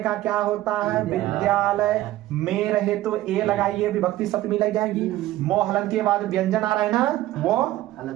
का क्या होता है? विद्यालय में रहे तो ए लगाइए, विभक्ति सप्तमी लग जाएगी। मोहलन के बाद व्यंजन आ रहा है ना, वो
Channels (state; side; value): quieter; left; 15.4 dB